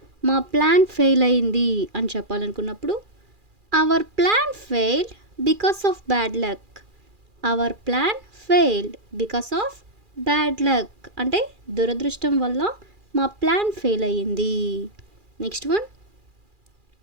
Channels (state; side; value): late; left; 2.4 ms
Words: మా ప్లాన్ ఫెయిల్ అయింది అని చెప్పాలనుకున్నప్పుడు our plan failed because of bad luck. Our plan failed because of bad luck అంటే దురదృష్టం వల్ల మా ప్లాన్ ఫెయిల్ అయ్యింది. నెక్స్ట్ వన్,